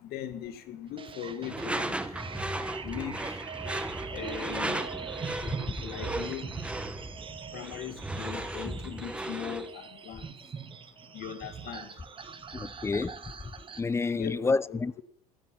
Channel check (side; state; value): both; normal; correlation 0.67